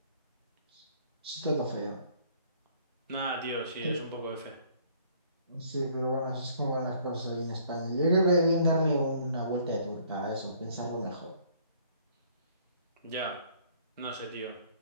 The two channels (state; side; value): inverted; both; correlation -0.60